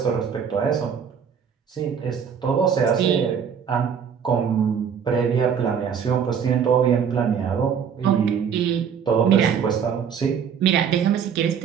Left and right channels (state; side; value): quieter; left; 7.4 dB